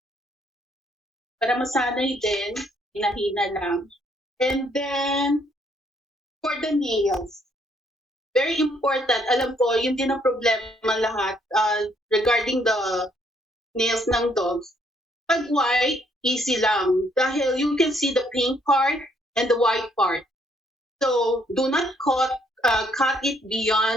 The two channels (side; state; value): both; normal; correlation 0.69